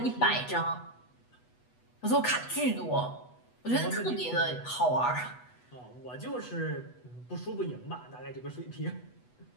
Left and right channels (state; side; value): late; right; 8.1 ms